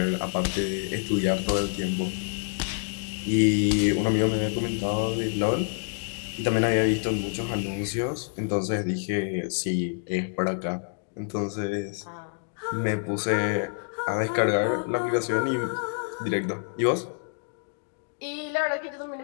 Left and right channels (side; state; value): right; silent; digital silence